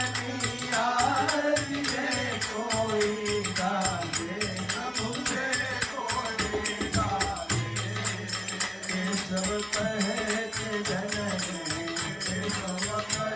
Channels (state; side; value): identical; both; correlation 1.00